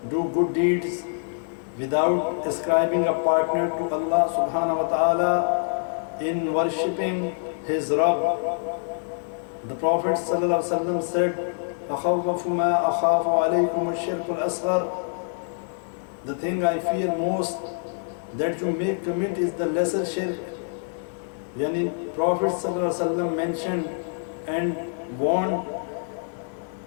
do good deeds without ascribing a partner to Allah subhanahu wa ta'ala in worshipping his Rabb. The Prophet sallallahu alaihi wasallam said, أَخَوَّفُ مَا أَخَافُ عَلَيْكُمُ الشِّرْكُ الْأَصْغَرُ. The thing I fear most that you may commit is the lesser shirk. Yani Prophet sallallahu alaihi wasallam mentioned and warned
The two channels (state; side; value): silent; right; digital silence